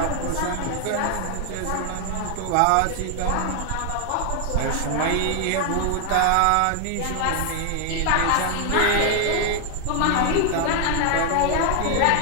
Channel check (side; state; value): both; different; correlation 0.00